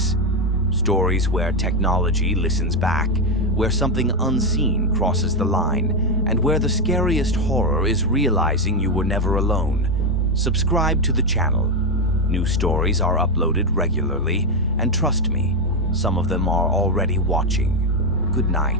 stories where technology listens back, where something unseen crosses the line, and where the scariest horror is realizing you were never alone, subscribe to the channel. New stories are uploaded regularly, and trust me, some of them are already watching. Good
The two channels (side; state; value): both; normal; correlation 0.07